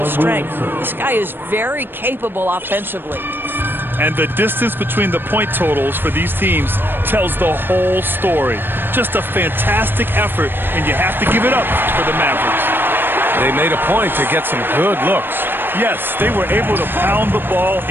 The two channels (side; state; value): left; late; 0.097 ms